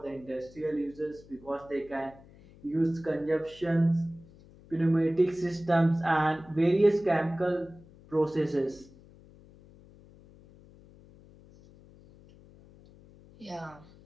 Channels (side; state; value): left; noise; hum, 23 dB below the sound